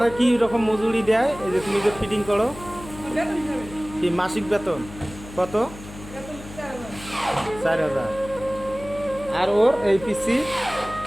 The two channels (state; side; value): noise; left; hum, 15 dB below the sound